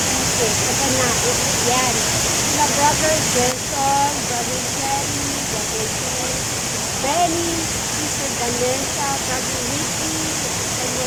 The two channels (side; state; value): both; identical; correlation 1.00